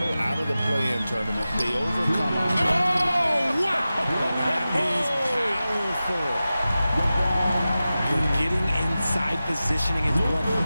out of the play-in tournament. They overcome. Oh, wow! That is powerful. Getting inside positioning is what he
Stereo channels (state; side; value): inverted; both; correlation -0.95